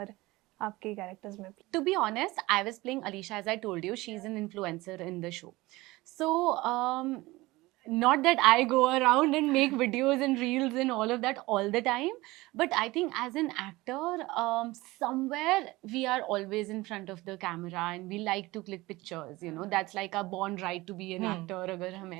आपके कैरेक्टर्स में? To be honest, I was playing Alisha, as I told you. She's an influencer in the show. So not that I go around and make videos and reels and all of that all the time, but I think as an actor, somewhere we are always in front of the camera and we like to click pictures, you know, that's like our born right to be an actor agar hum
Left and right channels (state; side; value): quieter; left; 20.3 dB